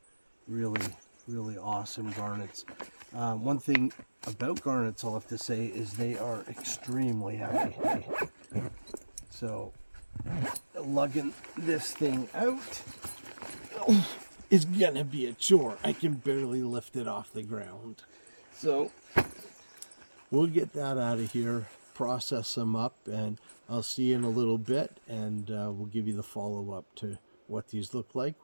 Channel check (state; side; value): inverted; both; correlation -1.00